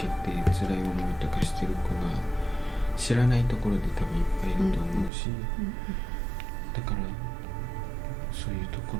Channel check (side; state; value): left; drops out; at 5.1 s